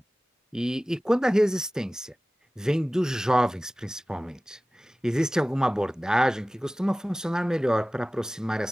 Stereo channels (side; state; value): both; normal; correlation 0.97